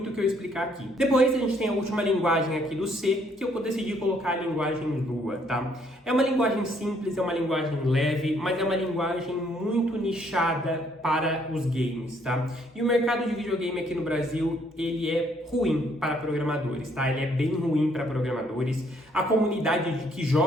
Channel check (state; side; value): normal; both; correlation 0.67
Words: o que eu explicar aqui. Depois a gente tem a última linguagem aqui do C, que eu decidi colocar a linguagem Lua, tá? É uma linguagem simples, é uma linguagem leve, mas é uma linguagem muito nichada para os games, tá? E o mercado de videogame aqui no Brasil, ele é ruim para programadores, tá? Ele é bem ruim para programadores. A comunidade que